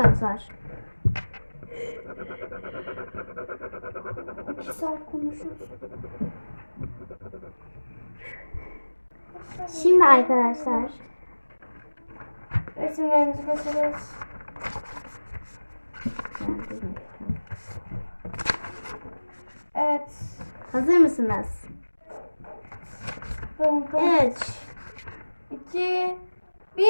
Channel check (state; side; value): inverted; both; correlation -1.00